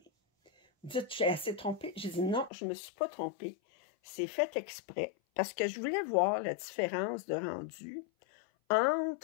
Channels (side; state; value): right; drops out; at 2.5 s